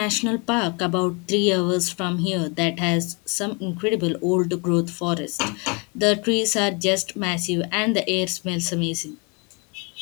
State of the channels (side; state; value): right; quieter; 32.1 dB